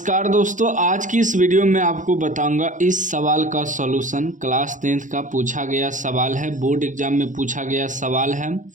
दोस्तों, आज की इस वीडियो में आपको बताऊंगा इस सवाल का सॉल्यूशन। क्लास 10th का पूछा गया सवाल है, बोर्ड एग्जाम में पूछा गया सवाल है।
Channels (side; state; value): left; late; 0.37 ms